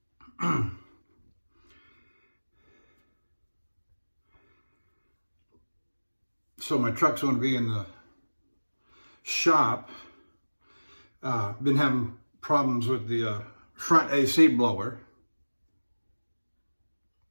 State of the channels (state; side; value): inverted; both; correlation -1.00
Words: So my truck's going to be in the shop. Been having problems with the front AC blower.